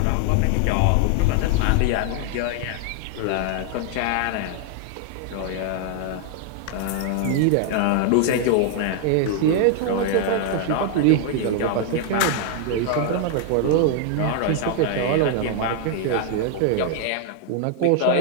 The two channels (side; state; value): both; different; correlation 0.00